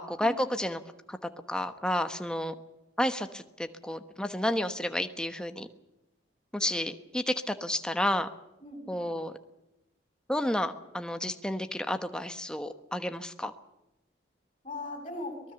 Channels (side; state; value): both; normal; correlation 0.79